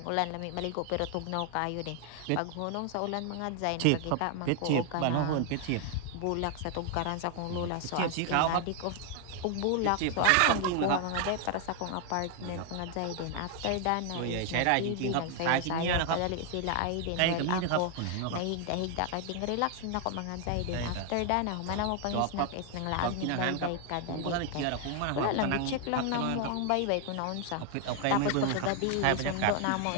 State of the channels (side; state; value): both; different; correlation 0.00